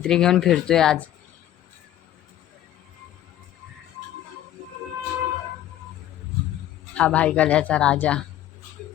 घेऊन फिरतोय आज. हा भाईकल्याचा राजा.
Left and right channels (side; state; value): right; quieter; 12.5 dB